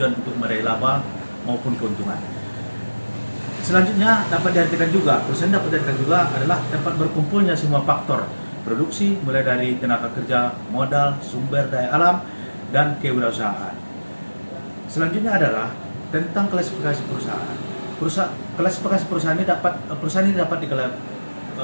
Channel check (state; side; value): inverted; both; correlation -1.00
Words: untuk meraih laba maupun keuntungan. Selanjutnya dapat diartikan juga, perusahaan dapat diartikan juga adalah tempat berkumpulnya semua faktor produksi, mulai dari tenaga kerja, modal, sumber daya alam, dan kewirausahaan. Selanjutnya adalah tentang klasifikasi perusahaan. Klasifikasi perusahaan ini dapat